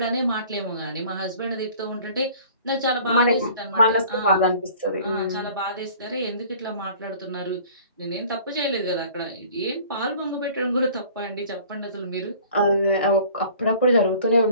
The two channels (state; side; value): inverted; both; correlation -0.49